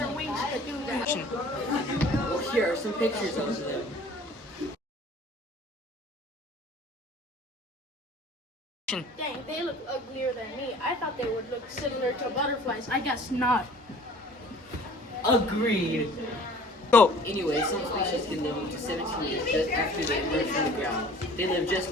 wings could do that. Well, here are some pictures of them. Dang, they look uglier than me. I thought they would look similar to butterflies. I guess not. Agreed. Go. Anyway, some species can live up to 17 years just after they emerge from the ground. They live just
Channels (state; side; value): normal; both; correlation 0.49